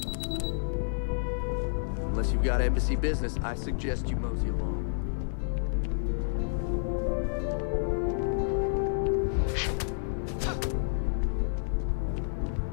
you've got embassy business, I suggest you mosey along.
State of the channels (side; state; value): right; silent; digital silence